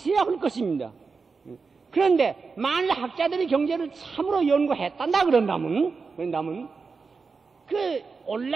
할 것입니다. 그런데 만일 학자들이 경제를 참으로 연구했단다 그런다면 그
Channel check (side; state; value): left; quieter; 4.8 dB